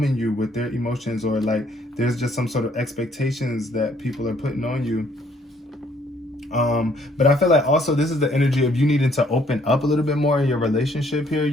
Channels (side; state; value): both; normal; correlation 0.65